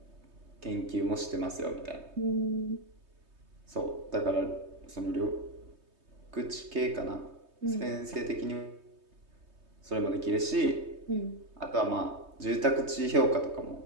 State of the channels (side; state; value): left; late; 3.2 ms